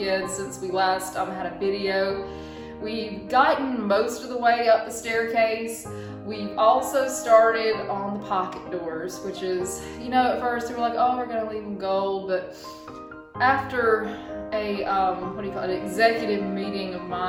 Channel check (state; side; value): identical; both; correlation 1.00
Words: since we last had a video. We've gotten most of the way up the staircase. We've also started on the pocket doors, which is, at first we were like, oh, we're gonna leave them gold, but after a executive meeting of